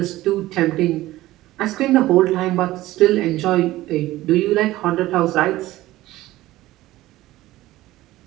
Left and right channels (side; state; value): left; quieter; 16.5 dB